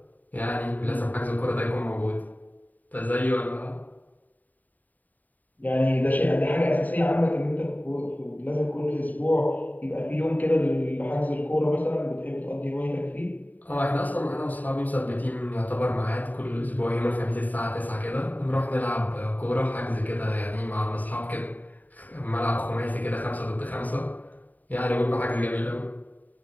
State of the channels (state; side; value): late; right; 0.081 ms